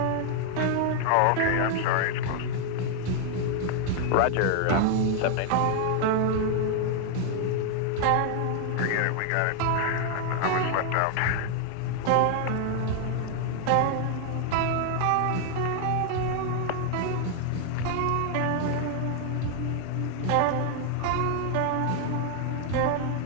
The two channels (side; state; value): both; different; correlation 0.00